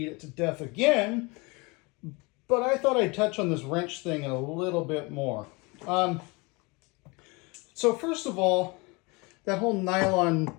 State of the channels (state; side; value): quieter; right; 27.1 dB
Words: it to death again, but I thought I'd touch on this wrench thing a little bit more. So first of all, that whole nylon